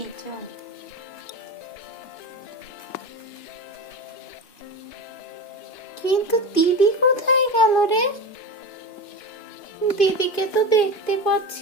চল। কিন্তু দিদি কোথায় গেল রে? দিদিকে তো দেখতে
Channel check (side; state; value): right; late; 2.5 ms